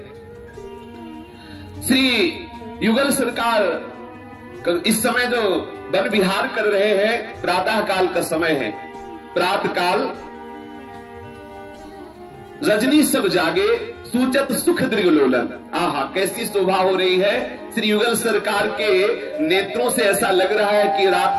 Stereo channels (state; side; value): identical; both; correlation 1.00